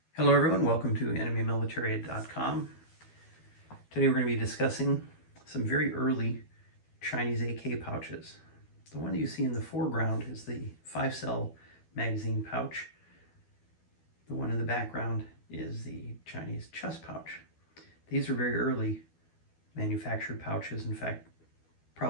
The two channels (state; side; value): late; right; 12 ms